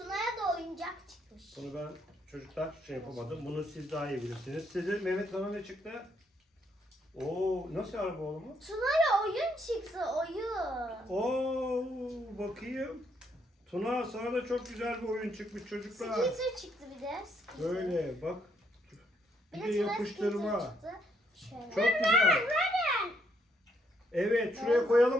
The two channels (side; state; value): both; normal; correlation 0.73